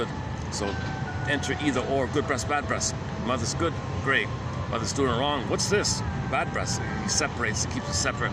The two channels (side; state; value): both; identical; correlation 1.00